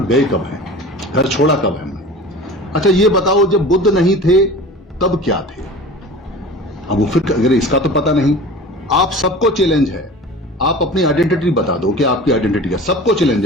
गए कब हैं, घर छोड़ा कब है हमने। अच्छा ये बताओ, जब बुद्ध नहीं थे तब क्या थे? अब वो फिर अगर इसका तो पता नहीं। आप सबको चैलेंज है, आप अपनी आइडेंटिटी बता दो कि आपकी आइडेंटिटी है। सबको चैलेंज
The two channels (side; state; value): both; normal; correlation 0.38